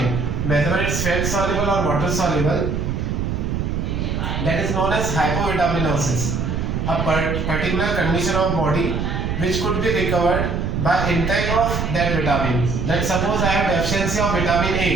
whether it's fat soluble or water soluble, that is known as hypovitaminosis, a particular condition of body which could be recovered by intake of that vitamin. Let's suppose I have deficiency of vitamin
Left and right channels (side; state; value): right; noise; rumble, 1 dB below the sound